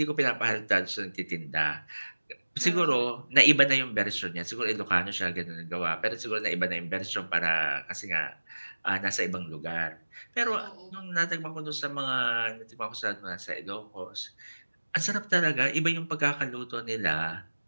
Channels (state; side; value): inverted; both; correlation -1.00